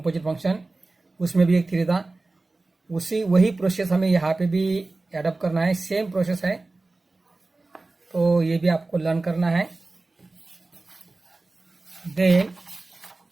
फंक्शन, उसमें भी एक थ्योरी था. वही प्रोसेस हमें यहाँ पे भी एडप्ट करना है. सेम प्रोसेस है, तो ये भी आपको लर्न करना है. Then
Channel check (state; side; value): quieter; left; 3.3 dB